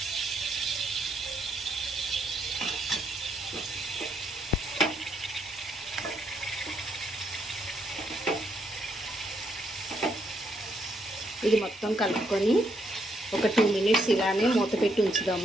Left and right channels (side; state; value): both; normal; correlation 0.75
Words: ఇది మొత్తం కలుపుకొని ఒక 2 మినిట్స్ ఇలానే మూత పెట్టి